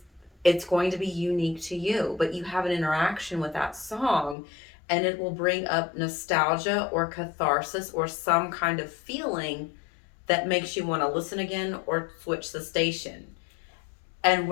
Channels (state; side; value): drops out; right; at 4.4 s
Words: it's going to be unique to you. But you have an interaction with that song, and it will bring up nostalgia or catharsis or some kind of feeling that makes you want to listen again or switch the station. And